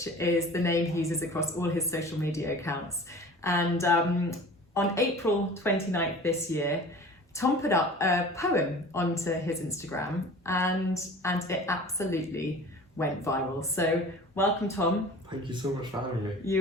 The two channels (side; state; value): both; normal; correlation 0.41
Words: is the name he uses across all his social media accounts. And on April 29th this year, Tom put up a poem onto his Instagram and it absolutely went viral. So welcome, Tom. Thank you so much for having me.